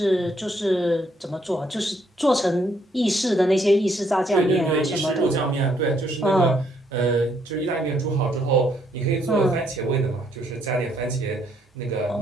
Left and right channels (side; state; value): both; normal; correlation 0.70